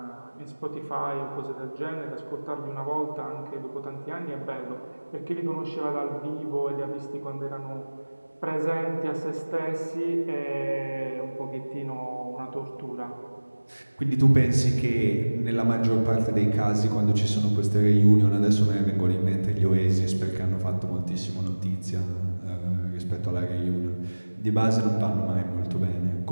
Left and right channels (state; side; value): inverted; both; correlation -1.00